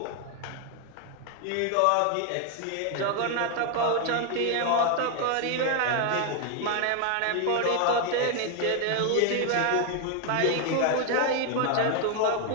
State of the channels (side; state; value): both; different; correlation 0.01